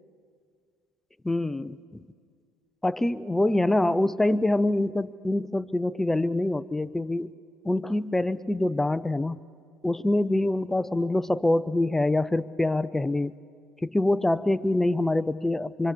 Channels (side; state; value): both; normal; correlation 0.98